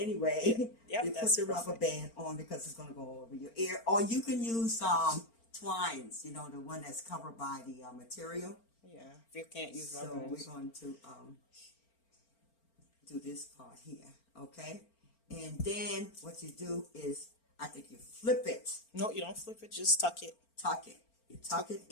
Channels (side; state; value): right; late; 4.4 ms